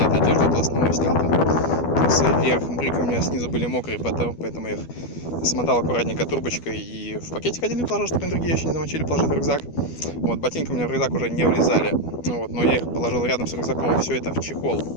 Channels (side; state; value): right; late; 12 ms